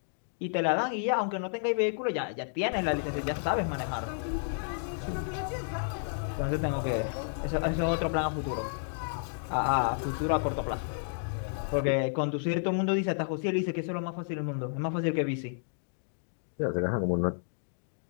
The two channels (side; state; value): right; silent; digital silence